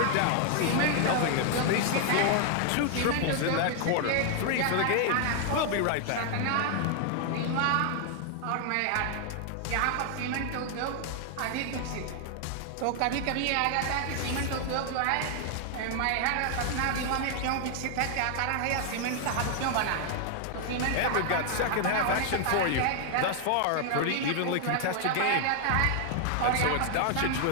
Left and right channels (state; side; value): different; both; correlation 0.00